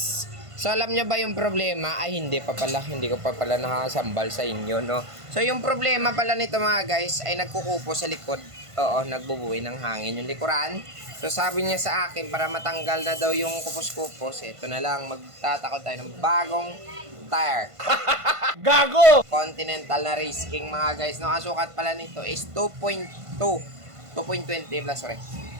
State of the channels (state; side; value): late; left; 1.5 ms